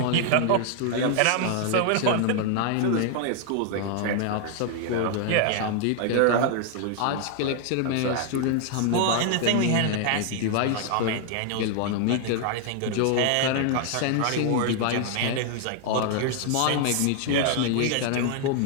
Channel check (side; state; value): both; different; correlation 0.00